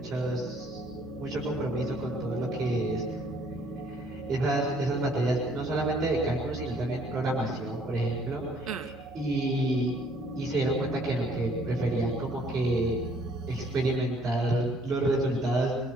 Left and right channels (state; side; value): noise; right; hum, 23 dB below the sound